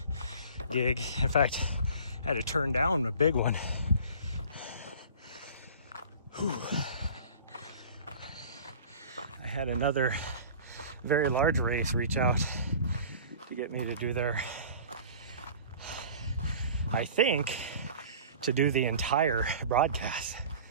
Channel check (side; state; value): both; inverted; correlation -0.43